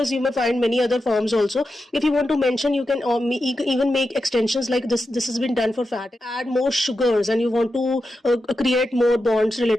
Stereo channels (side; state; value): both; normal; correlation 0.89